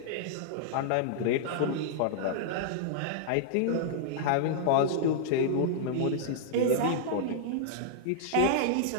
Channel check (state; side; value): different; both; correlation -0.02